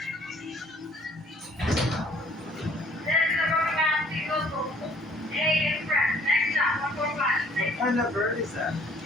What kind of bird is that?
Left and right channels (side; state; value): both; normal; correlation 0.58